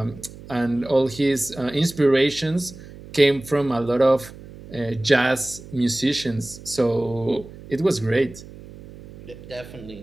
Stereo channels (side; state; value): right; noise; hum, 17 dB below the sound